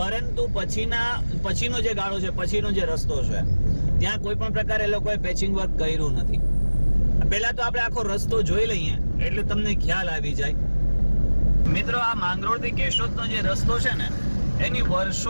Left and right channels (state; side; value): inverted; both; correlation -1.00